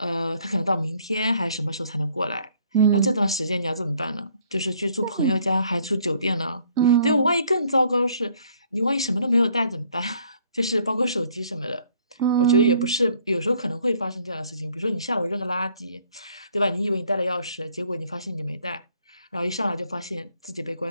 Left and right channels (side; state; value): both; inverted; correlation -0.62